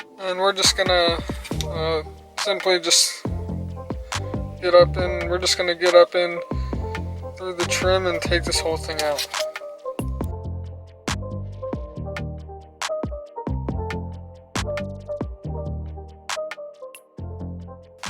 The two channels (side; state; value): both; identical; correlation 1.00